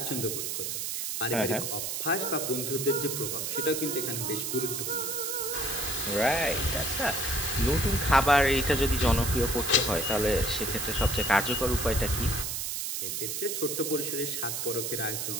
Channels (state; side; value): noise; right; hiss, 2 dB below the sound